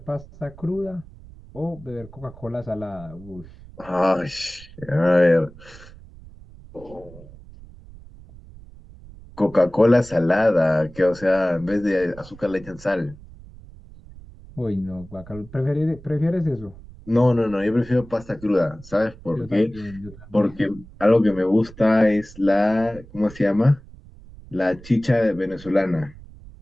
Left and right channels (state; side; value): noise; right; rumble, 19 dB below the sound